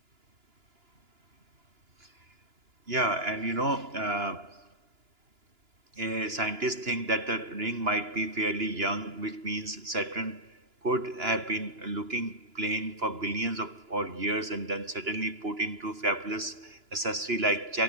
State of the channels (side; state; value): left; late; 2.9 ms